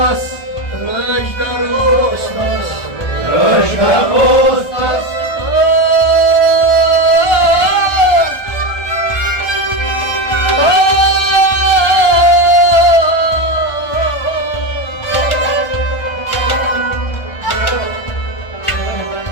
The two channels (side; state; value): right; late; 1.3 ms